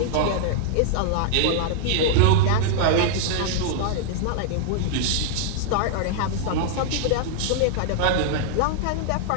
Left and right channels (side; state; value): both; different; correlation -0.01